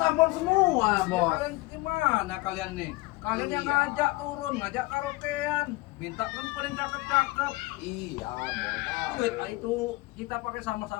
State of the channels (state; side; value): quieter; right; 21.1 dB